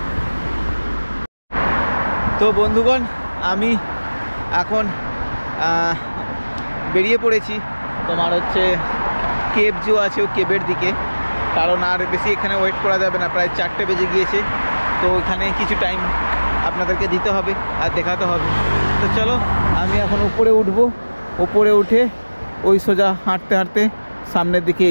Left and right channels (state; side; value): inverted; both; correlation -1.00